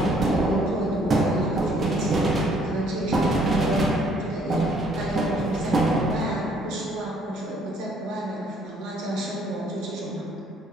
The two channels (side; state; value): both; normal; correlation 0.63